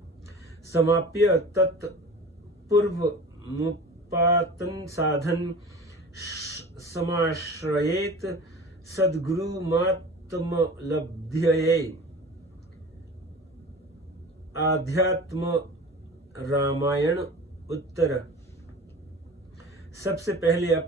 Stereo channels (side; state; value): both; normal; correlation 0.38